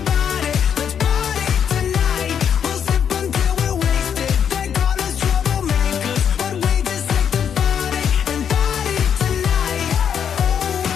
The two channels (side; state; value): right; quieter; 8.1 dB